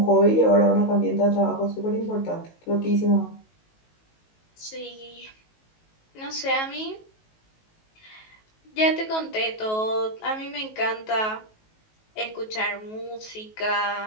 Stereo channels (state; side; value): late; right; 19 ms